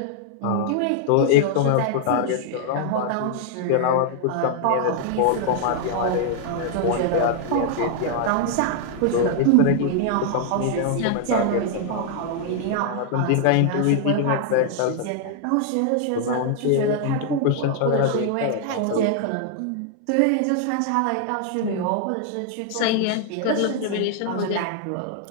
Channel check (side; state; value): both; different; correlation 0.00